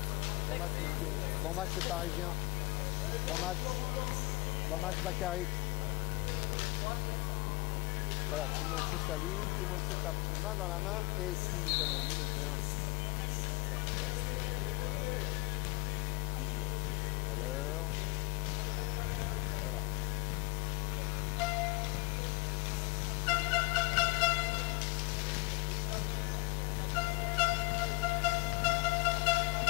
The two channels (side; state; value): right; quieter; 24.2 dB